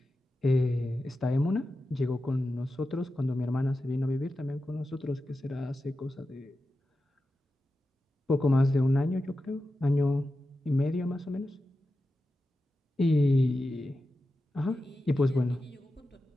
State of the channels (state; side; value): normal; both; correlation 0.92